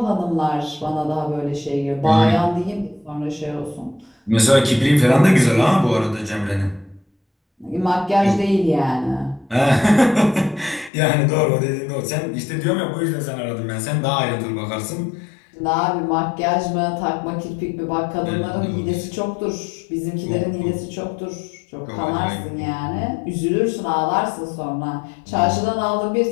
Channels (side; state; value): right; drops out; at 10.9 s